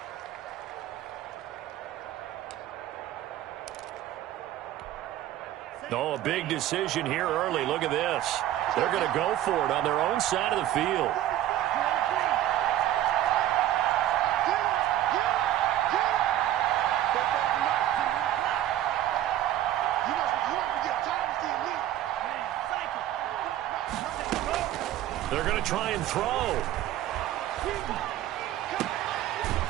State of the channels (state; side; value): quieter; left; 12.9 dB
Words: Oh, a big decision here early. Look at this. They're going to go for it on their own side of the field. They're going to try and throw.